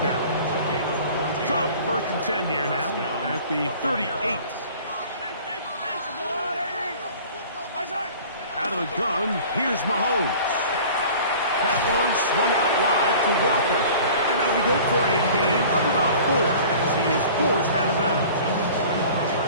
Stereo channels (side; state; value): both; inverted; correlation -0.44